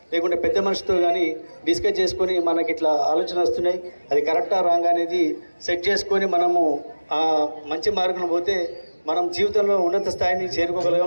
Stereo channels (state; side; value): inverted; both; correlation -1.00